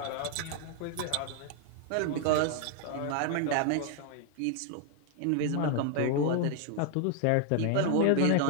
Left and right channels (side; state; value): both; different; correlation 0.00